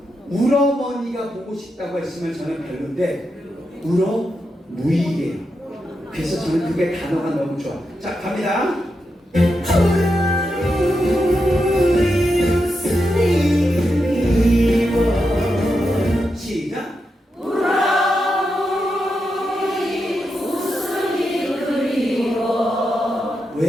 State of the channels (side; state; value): both; normal; correlation 0.86